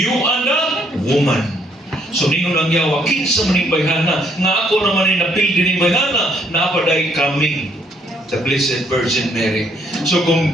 and the woman. So ningon ang yawa, kinsa man ning bayhana, nga ako naman ay napildi ning bayhana, naapaday coming the Blessed Virgin Mary. So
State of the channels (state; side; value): normal; both; correlation 0.68